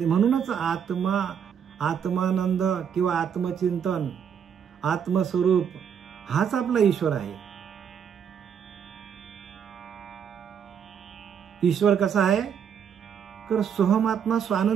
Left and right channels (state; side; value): quieter; left; 7.8 dB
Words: म्हणूनच आत्मानंद किंवा आत्मचिंतन, आत्मस्वरूप हाच आपला ईश्वर आहे. ईश्वर कसा आहे तर सोहमात्मा